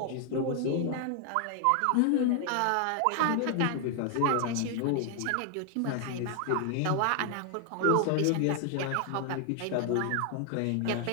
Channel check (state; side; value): different; both; correlation 0.00